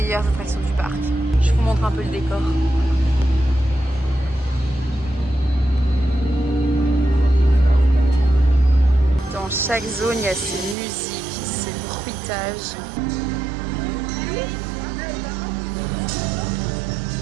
attractions du parc. Je vous montre un peu le décor. Dans chaque zone, il y a ces musiques, ces bruitages.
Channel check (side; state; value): left; drops out; at 10.8 s